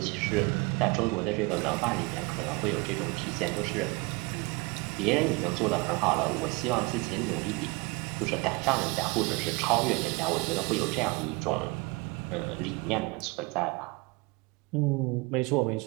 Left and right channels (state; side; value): quieter; left; 26.0 dB